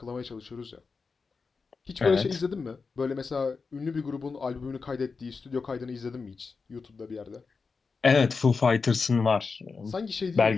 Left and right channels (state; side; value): quieter; right; 4.8 dB